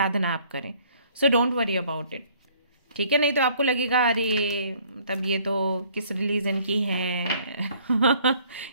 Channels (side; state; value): both; inverted; correlation -0.58